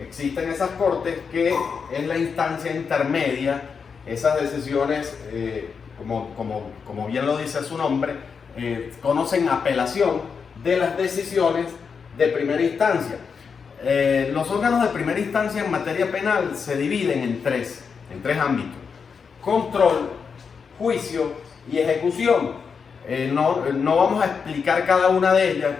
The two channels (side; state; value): right; quieter; 5.9 dB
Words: Existen esas cortes que es la instancia intermedia. Esas decisiones, como bien lo dice su nombre, conocen apelación de las decisiones de primera instancia. Los órganos de primera instancia en materia penal se dividen en tres ámbitos: control, juicio y ejecución. No vamos a explicar cada una de ellas,